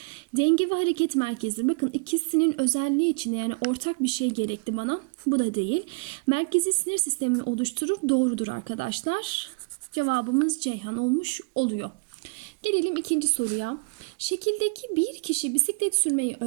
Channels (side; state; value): left; quieter; 32.1 dB